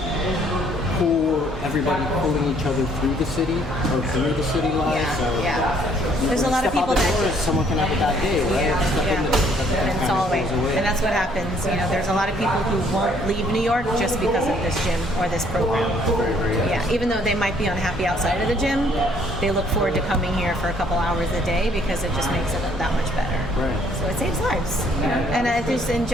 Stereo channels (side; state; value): both; normal; correlation 0.64